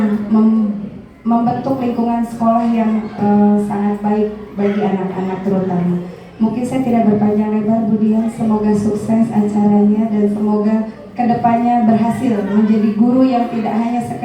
membentuk lingkungan sekolah yang sangat baik bagi anak-anak terutama. Mungkin saya tidak berpanjang lebar Bu Dian, semoga sukses acaranya dan semoga kedepannya berhasil menjadi guru yang tidak hanya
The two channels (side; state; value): both; identical; correlation 1.00